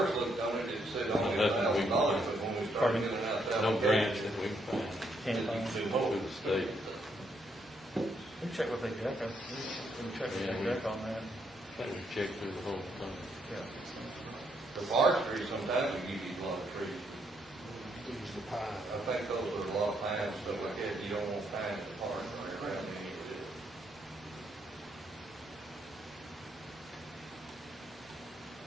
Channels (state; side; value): normal; both; correlation 0.75